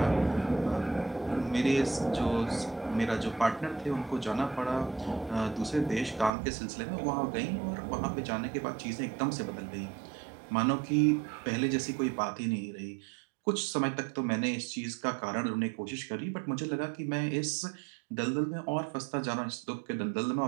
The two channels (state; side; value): drops out; left; at 6.3 s